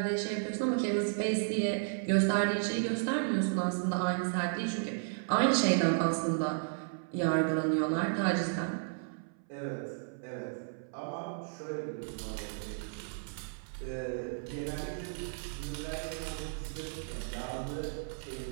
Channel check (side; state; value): left; silent; 55 dB below the other